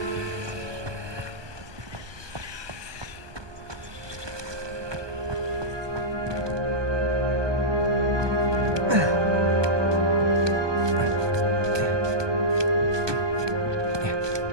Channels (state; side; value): late; left; 1.2 ms